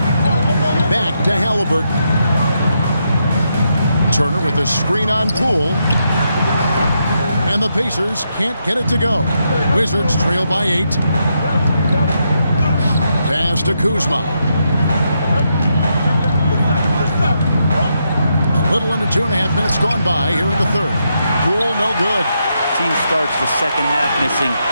Back to Halliburton. Turner with a screen on Poole. And the Pacers can't get it to go. Wizards trail by 8. Pass to Kuzma. A little under 2.5 minutes gone by here in the third. Poole no good. Team starts the second half missing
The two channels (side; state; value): both; inverted; correlation -0.81